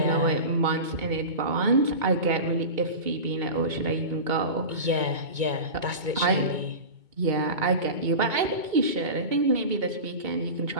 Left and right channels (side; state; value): left; late; 2.2 ms